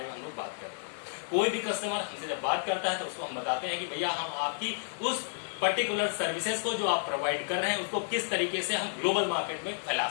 में हम लोग बात करते हैं। कोई भी कस्टमर हमसे जब बात करता है तो उसको हम बताते हैं कि भैया हम आपकी उस पर्टिकुलर सर्विसेज को जो आप प्रोवाइड कर रहे हैं उसको किस तरीके से हम ग्लोबल मार्केट में फैला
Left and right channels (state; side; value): silent; right; digital silence